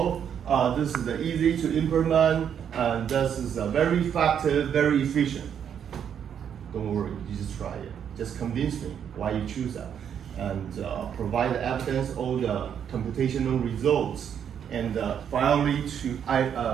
This is easy to implement, and this is very effective, very efficient. Don't worry, you just try it. Just convince me why you choose that, and provide the evidence, all the computational results, and finally to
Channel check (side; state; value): left; quieter; 8.4 dB